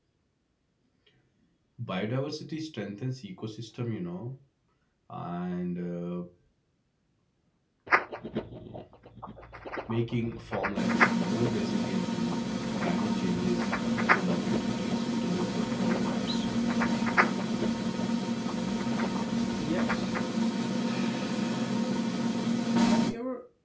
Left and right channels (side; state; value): both; identical; correlation 1.00